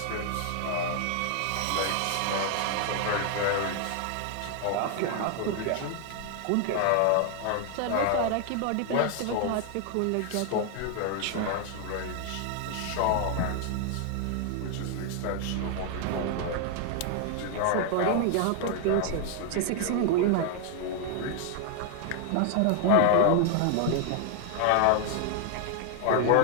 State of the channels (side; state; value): both; different; correlation 0.00